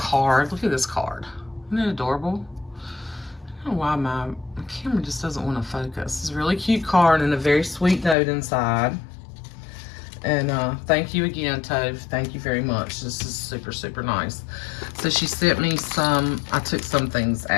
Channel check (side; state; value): right; drops out; at 8.2 s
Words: Look at this card. Isn't it adorable? I don't know why my camera just doesn't want to focus. It's a really cute card and a very sweet note inside. And thank you again, Tove. Thank you very much. This is super, super nice. So she sent me some, I took some things